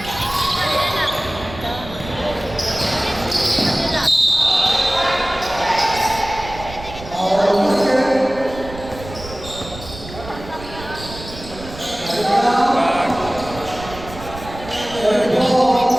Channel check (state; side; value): noise; right; rumble, 14 dB below the sound